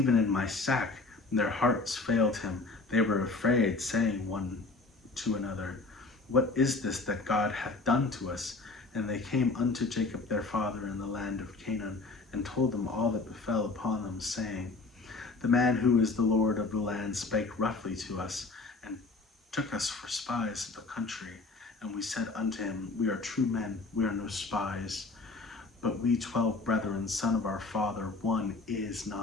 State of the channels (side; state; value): right; quieter; 3.6 dB